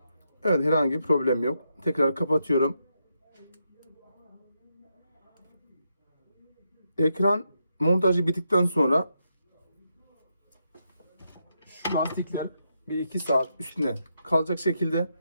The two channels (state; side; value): inverted; both; correlation -0.82